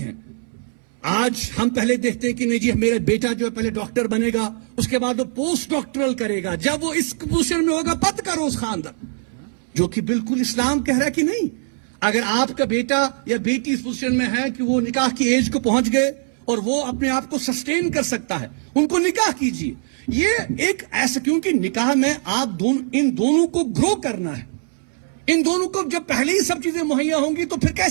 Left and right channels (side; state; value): left; silent; 65 dB below the other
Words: ہیں. آج ہم پہلے دیکھتے ہیں کہ نہیں جی میرا بیٹا جو ہے پہلے ڈاکٹر بنے گا، اس کے بعد وہ پوسٹ ڈاکٹرل کرے گا، جب وہ اس پوزیشن میں ہوگا پت کرو اس خاندان، جو کہ بالکل اسلام کہہ رہا ہے کہ نہیں. اگر آپ کا بیٹا یا بیٹی اس پوزیشن میں ہے کہ وہ نکاح کی ایج کو پہنچ گئے اور وہ اپنے آپ کو سسٹین کر سکتا ہے، ان کو نکاح کیجیے. یہ ایک ایسا، کیونکہ نکاح میں آپ ان دونوں کو گرو کرنا ہے. ان دونوں کو جب پہلے ہی سب چیزیں مہیا ہوں گی تو پھر